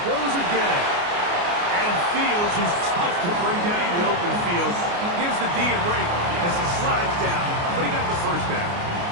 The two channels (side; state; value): left; late; 29 ms